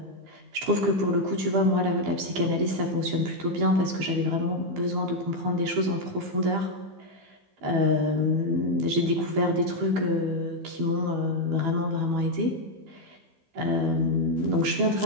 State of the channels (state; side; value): late; left; 15 ms